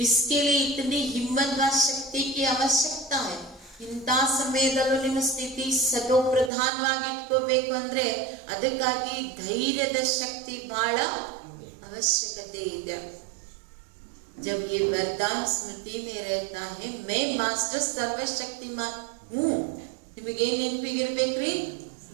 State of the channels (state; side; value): drops out; left; at 6.5 s